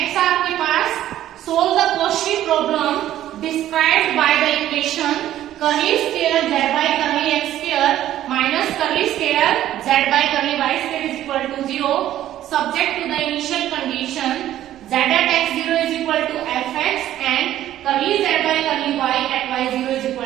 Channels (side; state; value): left; quieter; 12.7 dB